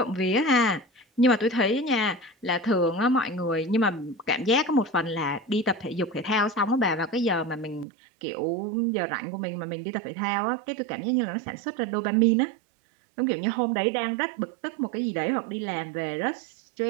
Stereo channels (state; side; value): drops out; left; at 7.9 s